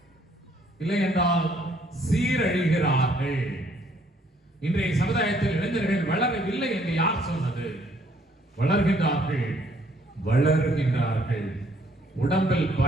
இல்லை என்றால் சீரழிகிறார்கள். இன்றைய சமுதாயத்தில் இளைஞர்கள் வளரவில்லை என்று யார் சொன்னது? வளர்கின்றார்கள். உடம்பில்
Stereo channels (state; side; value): normal; both; correlation 0.65